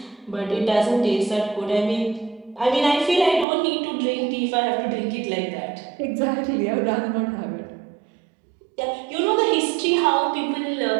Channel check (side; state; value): left; drops out; at 3.5 s